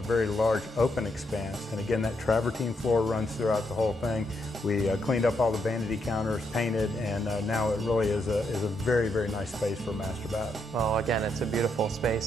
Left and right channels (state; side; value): normal; both; correlation 0.78